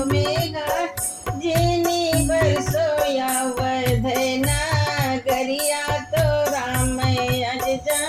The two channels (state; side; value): identical; both; correlation 1.00